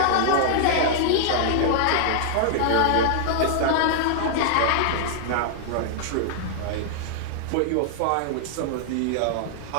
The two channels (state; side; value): different; both; correlation -0.01